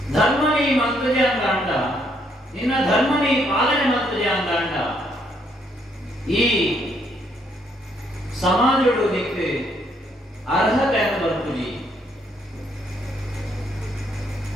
ಧರ್ಮ ನೀ ಮಂತ್ರಜೆ ಅಂತ ಅಂಡ ನಿನ್ನ ಧರ್ಮ ನೀ ಪಾಲನೆ ಮಂತ್ರಜೆ ಅಂತ ಅಂಡ ಈ ಸಮಾಜಗಳು ನಿಕ್ಕೆ ಅರ್ಹತೆ ಅಂತ ಬರ್ತುಜಿ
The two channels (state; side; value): normal; both; correlation 0.71